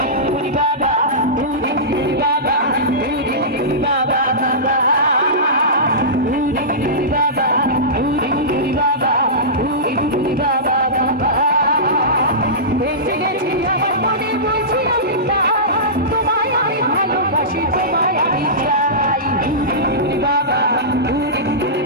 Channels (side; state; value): both; normal; correlation -0.18